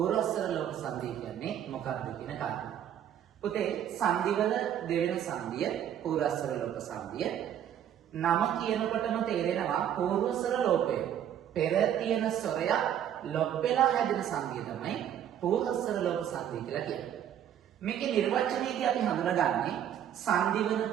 ලෝප සංධිය කියන්නේ මොකක්ද කියන කාරණා. පුතේ සංධිවල දෙවෙනි සංධිය පූර්වස්වර ලෝප සංධිය. නම කියනකොටම තේරෙනවා පූර්වස්වර ලෝපය. පෙර තියෙන ස්වරයක් ලොප් වෙලා හැදෙන සංධිය තමයි පූර්වස්වර ලෝප සංධිය කියලා කියන්නේ. මේකේ නිර්වචනයේදී අපි හඳුනගන්නේ සංධි වන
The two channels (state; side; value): quieter; left; 10.0 dB